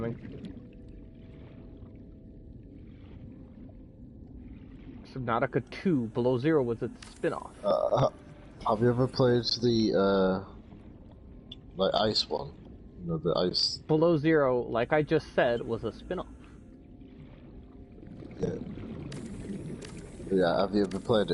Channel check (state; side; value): identical; both; correlation 1.00